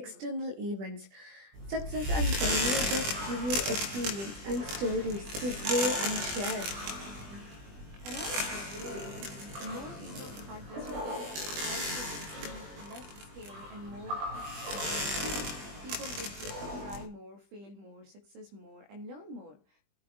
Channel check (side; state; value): left; late; 20 ms